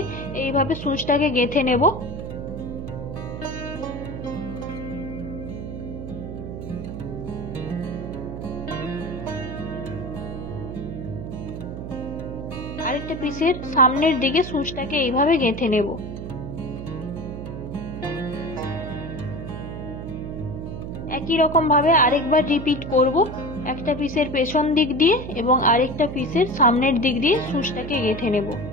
এইভাবে সুচটাকে গেঁথে নেব। আরেকটা পিসের সামনের দিকে সুচটাকে এইভাবে গেঁথে নেব। একই রকম ভাবে আরেকবার রিপিট করব, একটা পিসের পেছন দিক দিয়ে এবং আরেকটা পিসের সামনের দিক দিয়ে সুচটাকে গেঁথে নেব।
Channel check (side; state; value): right; noise; hum, 8 dB below the sound